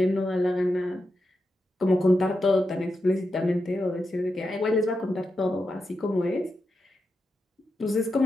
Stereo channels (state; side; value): normal; both; correlation 0.88